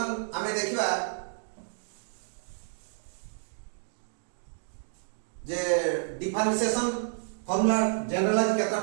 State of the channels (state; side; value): silent; left; digital silence